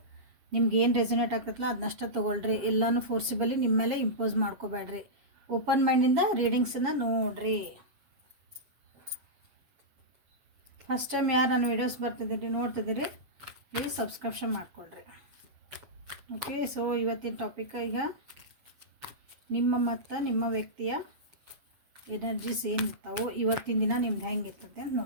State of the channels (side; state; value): left; late; 7.6 ms